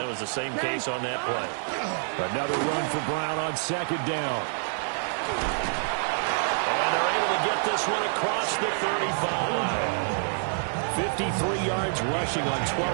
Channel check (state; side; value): silent; left; 60 dB below the other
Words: was the same case on that play. Another run for Brown on second down. And they're able to get this one across the 35. 53 yards rushing on